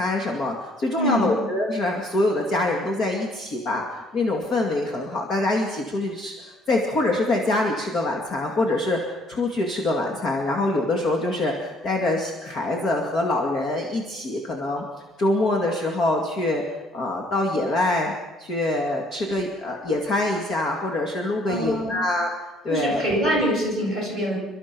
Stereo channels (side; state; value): both; normal; correlation 0.63